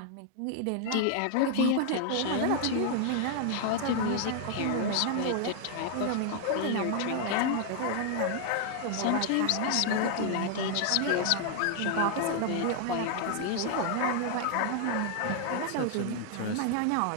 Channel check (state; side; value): different; both; correlation 0.00